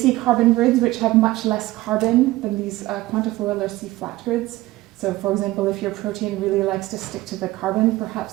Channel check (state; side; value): quieter; left; 17.8 dB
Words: carbon grids, which have much less carbon than these quantifoil or C-flat grids. So, for example, if your protein really likes to stick to the carbon, perhaps